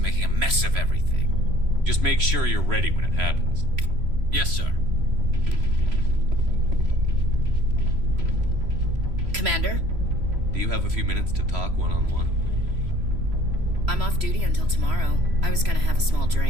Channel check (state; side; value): late; left; 3.0 ms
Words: a mess of everything. Just make sure you're ready when it happens. Yes, sir. Commander? Do you have a few minutes to talk one-on-one? I'm off duty until tomorrow. I was gonna have a small